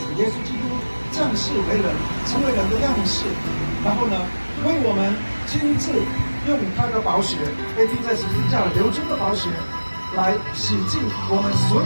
耶稣基督降世为人，成为人的样式，然后呢，为我们亲自用他的宝血，被钉在十字架流出的宝血，来洗净我们所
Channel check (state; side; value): inverted; both; correlation -1.00